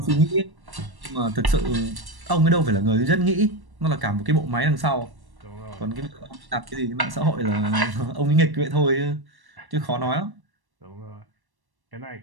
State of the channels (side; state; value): left; late; 1.1 ms